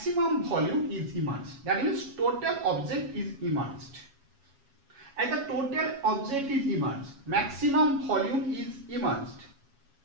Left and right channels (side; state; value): left; late; 7.2 ms